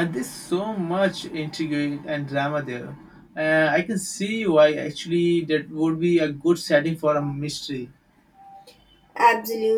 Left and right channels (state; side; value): identical; both; correlation 1.00